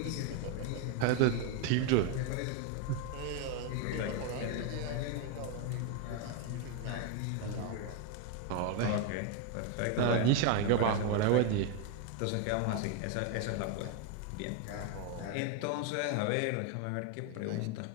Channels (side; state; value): both; different; correlation 0.01